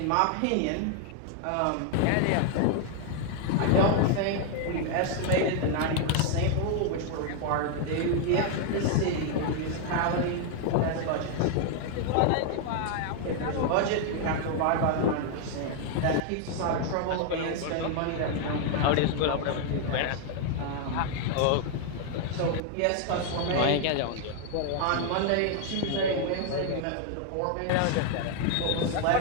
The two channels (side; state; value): both; different; correlation 0.00